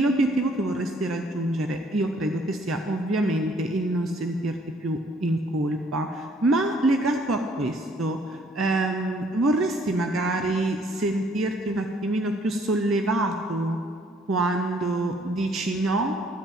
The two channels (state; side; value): normal; both; correlation 0.63